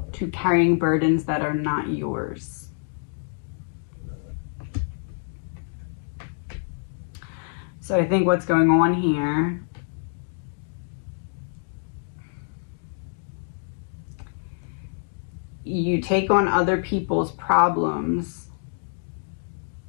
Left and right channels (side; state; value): right; silent; digital silence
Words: to carrying burdens that are not yours. So I think what's going on here you take on other people's problems